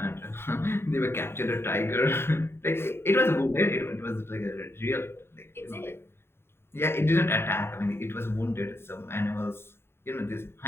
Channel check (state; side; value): late; right; 0.11 ms